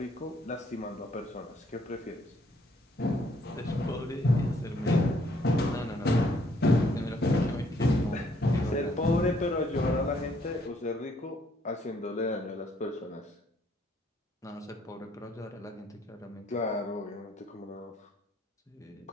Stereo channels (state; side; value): normal; both; correlation 0.67